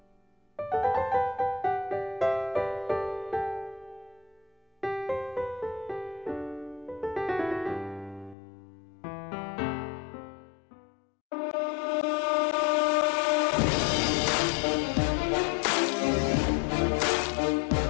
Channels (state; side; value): drops out; right; at 8.3 s